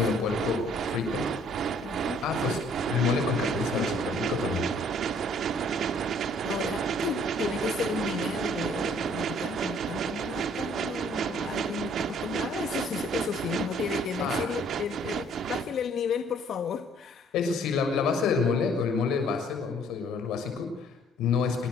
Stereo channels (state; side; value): normal; both; correlation 0.60